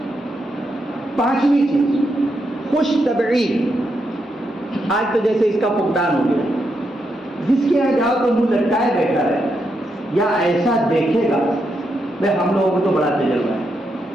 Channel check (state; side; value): normal; both; correlation 0.82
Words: پانچویں چیز، خوش طبعی. آج تو جیسے اس کا فقدان ہو گیا، جس کے یہاں جاؤ تو منہ لٹکائے بیٹھا رہے یا ایسا دیکھے گا. بھائی ہم لوگوں کو تو بڑا تجربہ ہے،